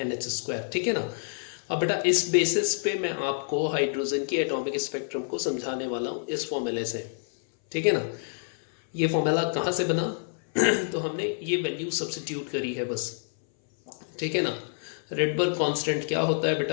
square, ठीक है ना। अब बेटा इस बेसिस पे मैं आपको हाइड्रोजन की एटॉमिक स्पेक्ट्रम को समझाने वाला हूँ इस फॉर्मूले से, ठीक है ना। ये फॉर्मूला कहाँ से बना तो हमने ये वैल्यू सब्स्टिट्यूट करी है बस, ठीक है ना। रेडबर्ग कांस्टेंट क्या होता है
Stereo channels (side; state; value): right; silent; 60 dB below the other